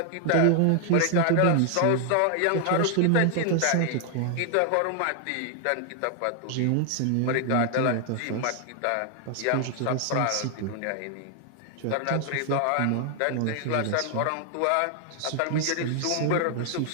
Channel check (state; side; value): different; both; correlation 0.00